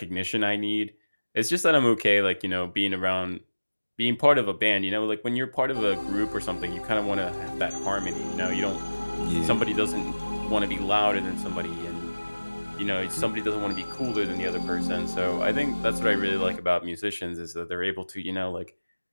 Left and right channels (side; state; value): both; inverted; correlation -1.00